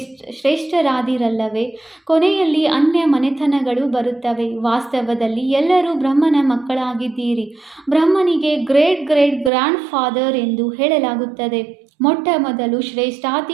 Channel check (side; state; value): left; drops out; at 9.5 s